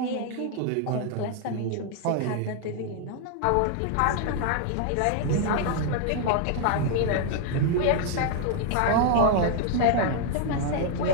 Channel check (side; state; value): both; different; correlation 0.00